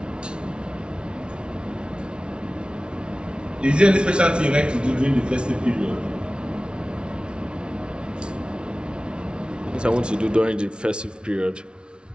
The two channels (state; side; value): late; left; 0.056 ms